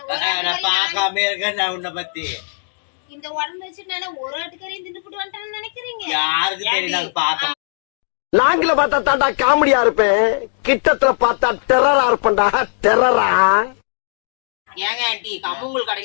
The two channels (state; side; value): silent; right; 67 dB below the other